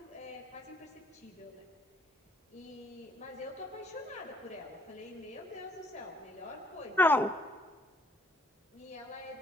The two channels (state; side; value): normal; both; correlation 0.64